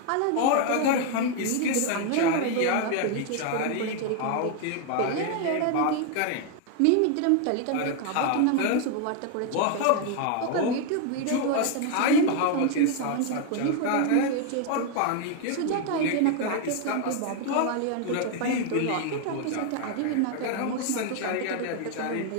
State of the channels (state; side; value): different; both; correlation 0.01